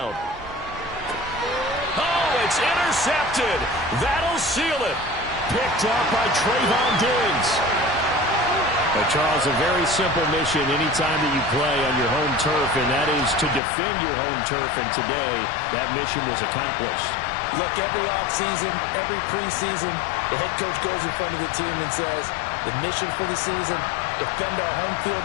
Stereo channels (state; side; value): drops out; right; at 13.6 s